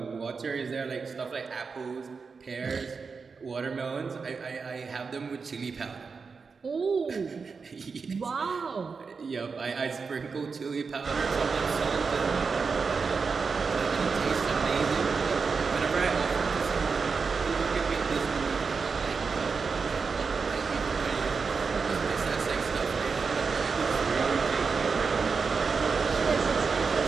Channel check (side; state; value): left; quieter; 5.0 dB